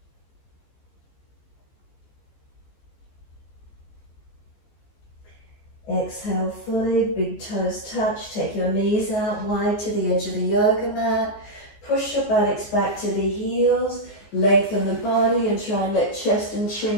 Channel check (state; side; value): late; right; 15 ms